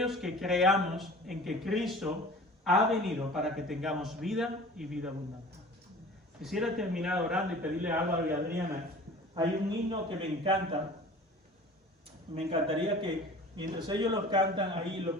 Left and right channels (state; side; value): normal; both; correlation 0.43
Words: que creamos en que Cristo ha venido para que tengamos vida y vida abundante. Quisiera terminar orando y pedirle a Álvaro y a Adriana. Hay un himno que me encanta. Me encantaría que mientras ellos lo cantan ahí, los